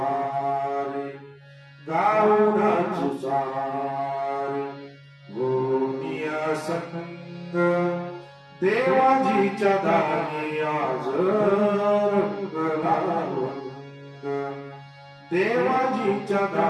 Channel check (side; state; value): both; identical; correlation 1.00